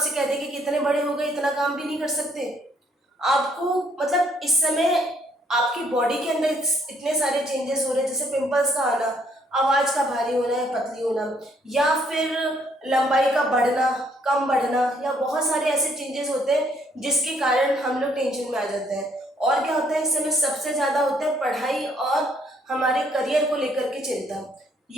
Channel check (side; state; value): both; normal; correlation 0.67